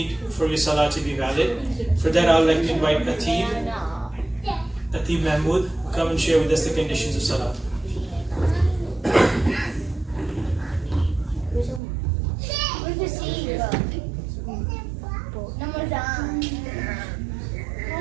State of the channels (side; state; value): left; drops out; at 11.8 s